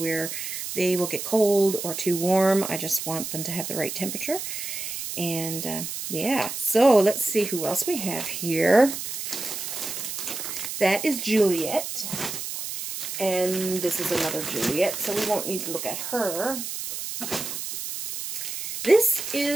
they will get cold or too warm. I just want them to have the right temperature. And yeah, so let's see who else we have here. That is Juliet, and this is another Juliet, so we won't need to look at her. This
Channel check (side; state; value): right; noise; hiss, 6 dB below the sound